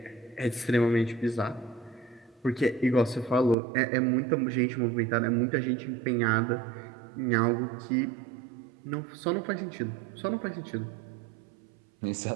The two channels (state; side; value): drops out; left; at 3.6 s